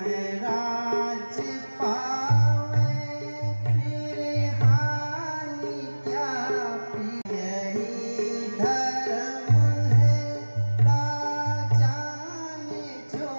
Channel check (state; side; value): inverted; both; correlation -1.00